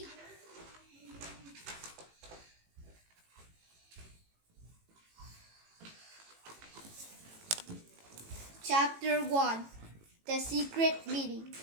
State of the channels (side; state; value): left; late; 18 ms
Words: Chapter 1: The Secret Meeting.